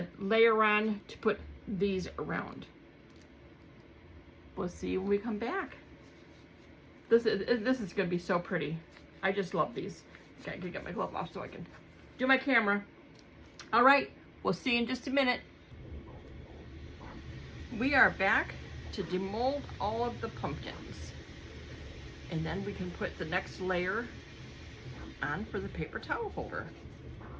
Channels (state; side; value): identical; both; correlation 1.00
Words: layer on to put these around. We'll see you when we come back. This is gonna be so pretty. I just love these. Okay, I can get my glove off so I can do my camera. All right, we'll see you in just a minute. We are back to demold all of the pumpkins. And then we can put the next layer on for the paper towel holder.